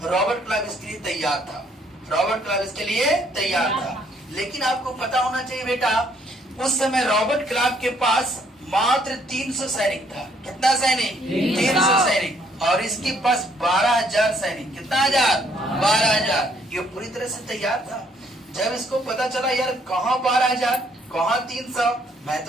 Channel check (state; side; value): normal; both; correlation 0.67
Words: रॉबर्ट क्लाइव इसके लिए तैयार था। रॉबर्ट क्लाइव इसके लिए तैयार था। लेकिन आपको पता होना चाहिए बेटा, उस समय रॉबर्ट क्लाइव के पास मात्र 300 सैनिक था। कितना सैनिक? 300 सैनिक। और इसके पास 12,000 सैनिक। कितना हजार? 12,000। ये पूरी तरह से तैयार था। जब इसको पता चला यार कहाँ 12,000 कहाँ 300, मैं